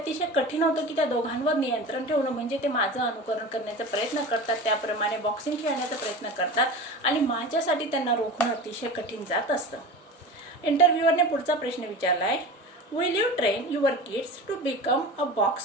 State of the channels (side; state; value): both; normal; correlation 0.32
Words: कठीण होतं की त्या दोघांवर नियंत्रण ठेवणं. म्हणजे ते माझं अनुकरण करण्याचा प्रयत्न करतात, त्याप्रमाणे बॉक्सिंग खेळण्याचा प्रयत्न करतात आणि माझ्यासाठी त्यांना रोखणं अतिशय कठीण जात असतं. इंटरव्ह्यूअरने पुढचा प्रश्न विचारला आहे, will you train your kids to become a